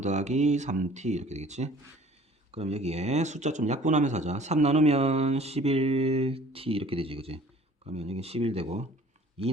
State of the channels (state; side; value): normal; both; correlation 0.51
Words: 더하기 3t 이렇게 되겠지. 그럼 여기에 숫자 좀 약분하면서 하자. 3 나누면 11t 이렇게 되지, 그지? 그러면 여기 11 되고 2